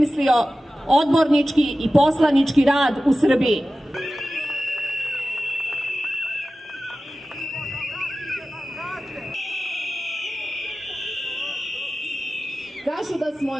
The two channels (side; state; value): both; normal; correlation 0.95